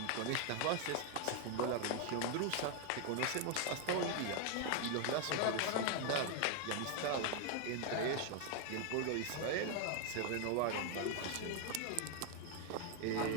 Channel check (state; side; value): different; both; correlation 0.00